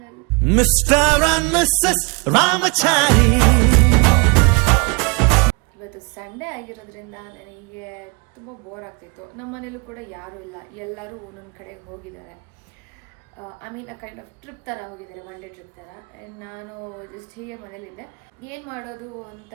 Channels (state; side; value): quieter; left; 31.9 dB